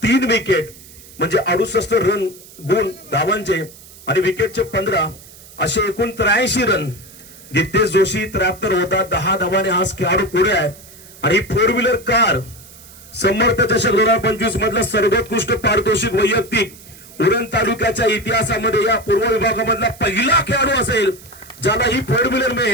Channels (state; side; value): noise; right; hiss, 20 dB below the sound